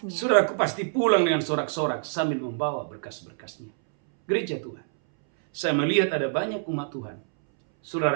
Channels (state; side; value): silent; left; 61 dB below the other